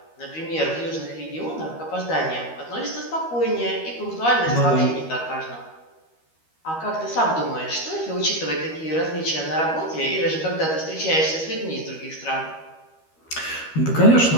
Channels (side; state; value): right; late; 13 ms